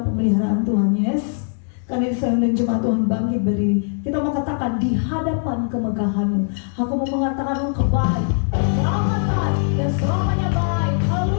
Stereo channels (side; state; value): right; silent; 65 dB below the other